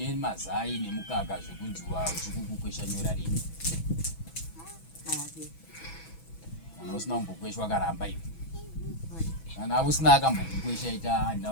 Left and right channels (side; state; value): right; late; 6.1 ms